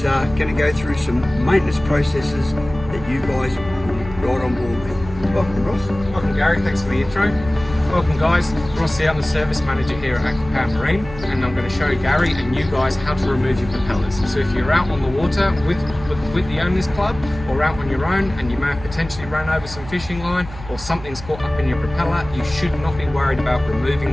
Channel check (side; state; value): right; noise; hum, 14 dB below the sound